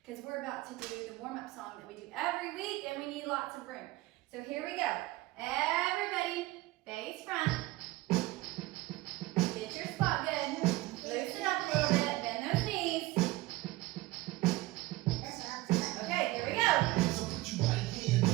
because we're about to do the warm-up song that we do every week and we need lots of room. So here we go. Everybody, face front. Get your spot good. Loosen up a little bit. Bend those knees. Okay, here we go. So put your right hand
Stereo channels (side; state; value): left; quieter; 19.0 dB